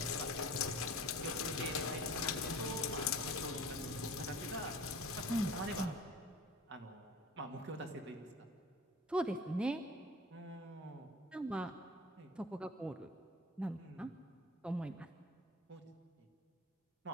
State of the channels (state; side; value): normal; both; correlation 0.41